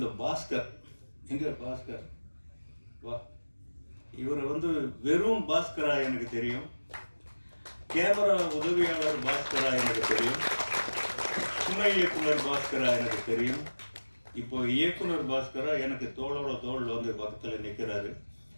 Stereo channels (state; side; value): inverted; both; correlation -1.00